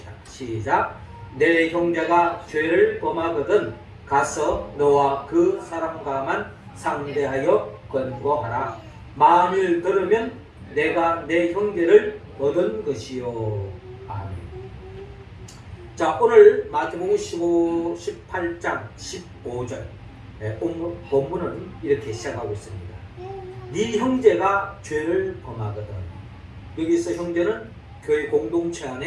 시작. 내 형제가 죄를 범하거든 가서 너와 그 사람과만 상대하여 권고하라. 만일 들으면 내가 내 형제를 얻은 것이요. 아멘. 자, 오늘 마태복음 18장 15절 본문은 이렇게 시작하고 있습니다. 네 형제가 죄를 범하거든. 여기서 형제는 교회 공동체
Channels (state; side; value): identical; both; correlation 1.00